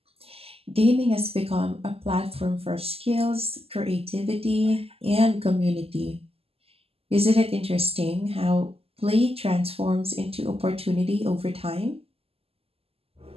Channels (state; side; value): late; left; 0.28 ms